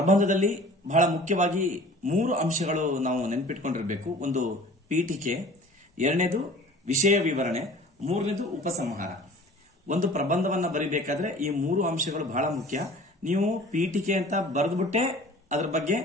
ಬಹಳ ಮುಖ್ಯವಾಗಿ 3 ಅಂಶಗಳು ನಾವು ನೆನಪಿಟ್ಕೊಂಡಿರಬೇಕು. ಒಂದು ಪೀಠಿಕೆ, 2ನೇದು ವಿಷಯ ವಿವರಣೆ, 3ನೇದು ಉಪಸಂಹಾರ. ಒಂದು ಪ್ರಬಂಧವನ್ನ ಬರೀಬೇಕಾದ್ರೆ ಈ 3 ಅಂಶಗಳು ಬಹಳ ಮುಖ್ಯ. ನೀವು ಪೀಠಿಕೆ ಅಂತ ಬರೆದ್ಬಿಟ್ಟೆ ಅದ್ರ ಬಗ್ಗೆ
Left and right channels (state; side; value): normal; both; correlation 0.45